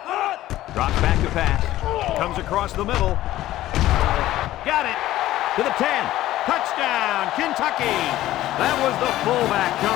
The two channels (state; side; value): quieter; right; 14.8 dB